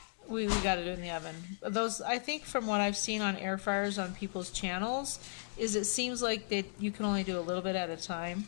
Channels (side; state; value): right; silent; digital silence